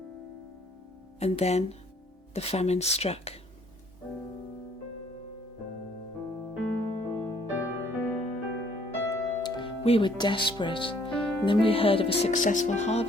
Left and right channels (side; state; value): both; normal; correlation 0.62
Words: And then the famine struck. We were desperate, and then we heard of a successful